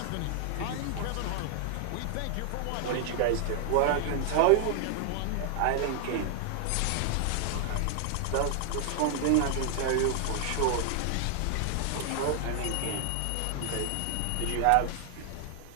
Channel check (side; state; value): both; different; correlation 0.00